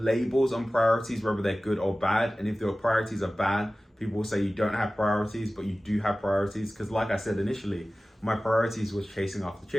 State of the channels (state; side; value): normal; both; correlation 0.96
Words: on priorities, whether they're good or bad. And if your priorities are bad, people will say you don't have priorities, but you do have priorities. Because like I said initially, my priorities was chasing after